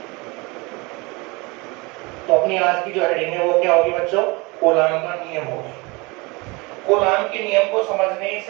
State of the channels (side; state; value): left; quieter; 26.0 dB